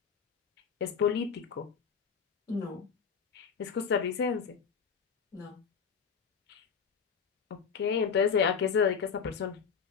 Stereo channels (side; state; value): right; quieter; 6.5 dB